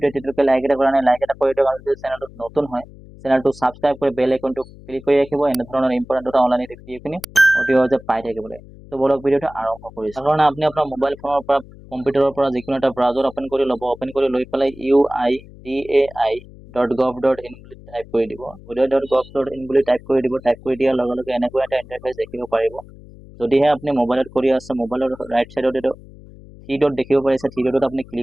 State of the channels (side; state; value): left; noise; hum, 20 dB below the sound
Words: এতিয়ালৈকে লাইক এটা কৰা নাই, লাইক এটা কৰি দিয়ক, আৰু যদি চেনেলটোত নতুন হয় চেনেলটো ছাবস্ক্ৰাইব কৰি বেল আইকনটো ক্লিক কৰি ৰাখিব এনেধৰণৰ ইম্পৰ্টেণ্ট এটা অনলাইন ভিডিঅ'খিনি অতি সহজে পাই থাকিবলৈ। তো বলক ভিডিঅ'টো আৰম্ভ কৰিছোঁ। তাৰ কাৰণে আপুনি আপোনাৰ মোবাইল ফোনৰ পৰা কম্পিউটাৰৰ পৰা যিকোনো এটা ব্ৰাউজাৰ অ'পেন কৰি ল'ব। অ'পেন কৰি লৈ পেলাই uidai.gov.in বুলি টাইপ কৰি দিব। uidai.gov.in বুলি টাইপ কৰি দিব। টাইপ কৰি দিয়াৰ লগে লগে এনেকুৱা এটা ইণ্টাৰফেচ দেখিব পাৰিব। যদিহে আপুনি মোবাইলত কৰি আছে, মোবাইলৰ ৰাইট চাইডত এইটো থ্ৰী ডট দেখিব পাৰিছে, থ্ৰী ডটত আপুনি